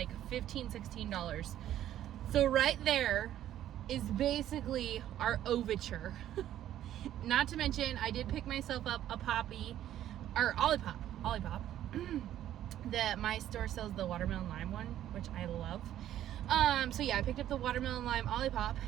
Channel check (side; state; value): left; quieter; 12.0 dB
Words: $15, $16. So right there is basically our overture. Not to mention, I did pick myself up a Olipop. That my store sells the watermelon lime one, which I love. So yeah, I picked up the watermelon lime Olipop,